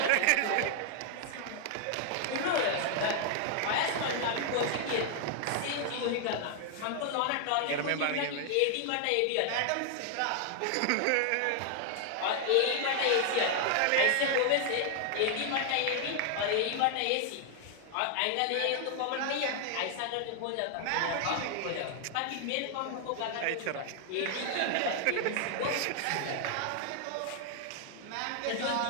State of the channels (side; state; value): both; different; correlation 0.00